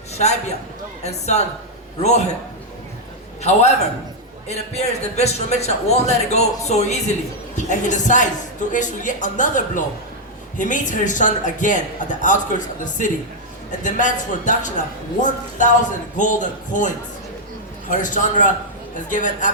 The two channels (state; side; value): normal; both; correlation -0.03